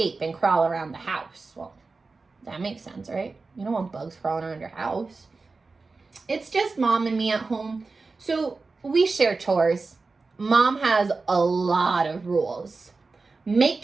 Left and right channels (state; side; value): quieter; left; 4.0 dB